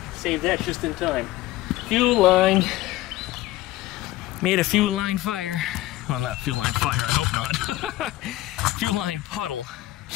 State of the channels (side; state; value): right; quieter; 16.8 dB